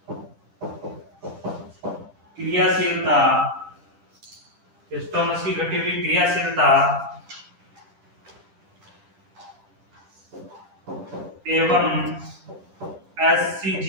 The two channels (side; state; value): left; late; 10 ms